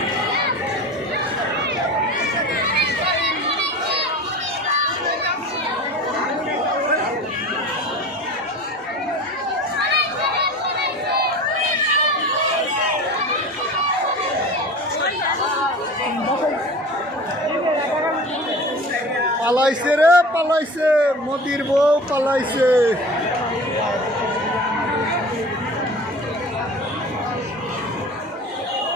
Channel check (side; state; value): both; normal; correlation 0.36